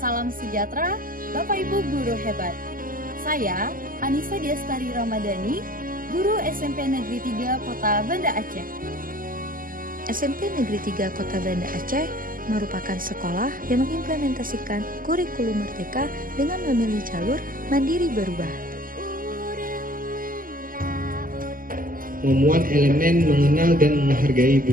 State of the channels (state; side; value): late; left; 0.41 ms